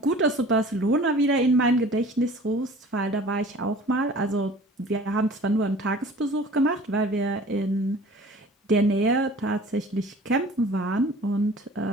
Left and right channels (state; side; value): normal; both; correlation 0.46